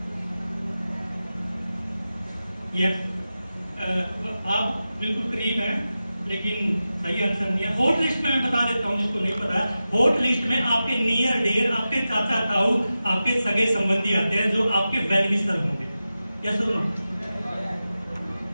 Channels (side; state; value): both; inverted; correlation -0.93